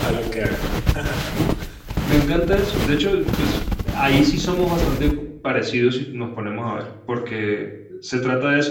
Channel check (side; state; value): both; identical; correlation 1.00